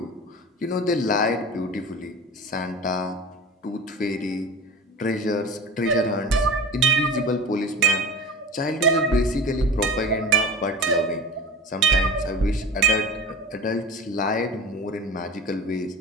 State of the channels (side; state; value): both; normal; correlation 0.33